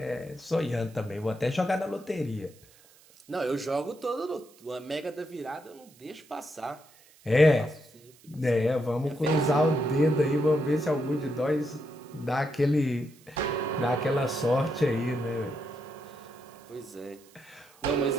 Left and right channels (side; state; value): right; noise; hiss, 27 dB below the sound